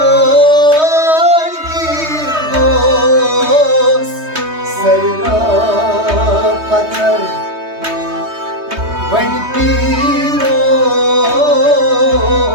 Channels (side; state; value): left; late; 3.2 ms